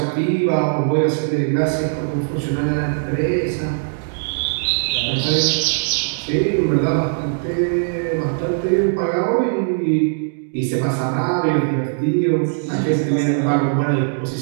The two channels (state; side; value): silent; left; digital silence